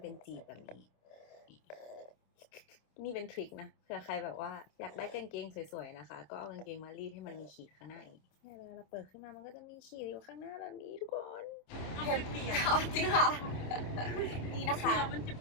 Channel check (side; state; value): right; late; 27 ms